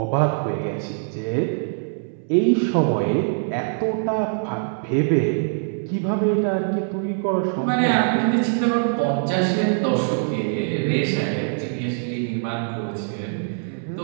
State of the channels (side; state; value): left; silent; 60 dB below the other